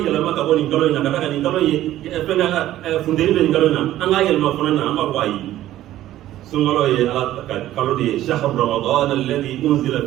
yɛlɛma ka bɔ nin kalo in na ka taa ka nin kalo in ye fɛn funteni bɛ nin kalo in na an k'a yɛlɛma fana na an b'a fɔ ayi sunkalo ye ala ka kalo de ye shahru ramadan alladhi unzila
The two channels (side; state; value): left; quieter; 13.8 dB